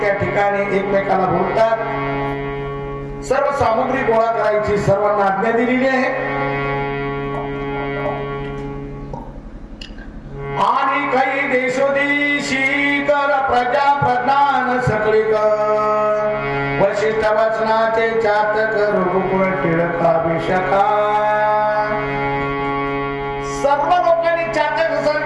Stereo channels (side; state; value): both; identical; correlation 1.00